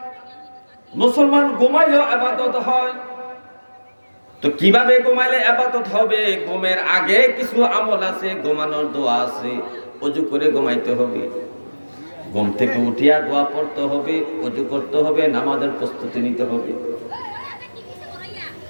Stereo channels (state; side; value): inverted; both; correlation -1.00